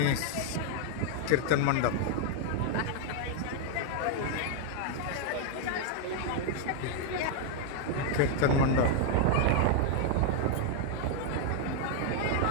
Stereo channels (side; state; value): both; different; correlation 0.00